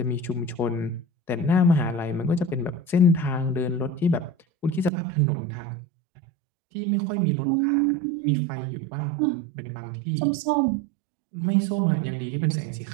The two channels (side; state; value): left; drops out; at 4.9 s